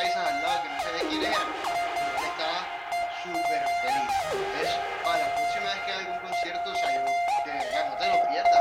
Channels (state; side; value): identical; both; correlation 1.00